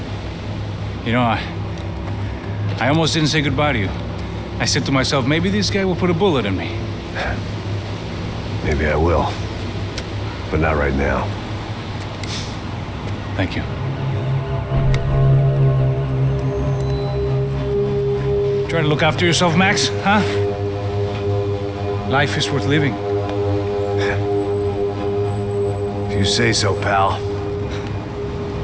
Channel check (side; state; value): both; identical; correlation 1.00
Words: You know, I almost didn't say goodbye to you. I said to myself, maybe this guy will put a bullet in me. Maybe I will. But not right now. Thank you. Try to look after yourself, Max, huh? Life is worth living. If you say so, pal.